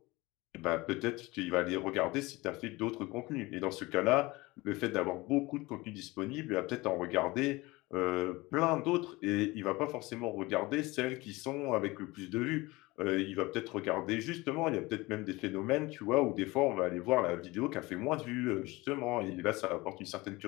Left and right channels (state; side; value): quieter; right; 21.8 dB